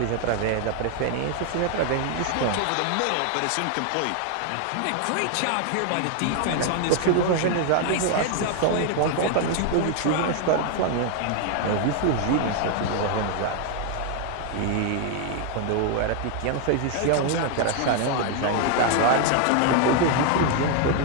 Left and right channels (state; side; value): different; both; correlation 0.01